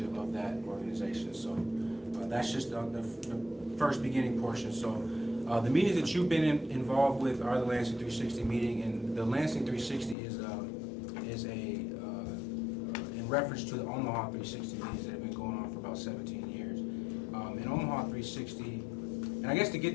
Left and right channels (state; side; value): drops out; right; at 10.2 s